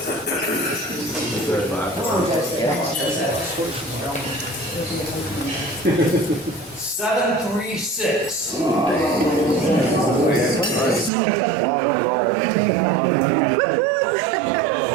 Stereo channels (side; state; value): left; drops out; at 11.1 s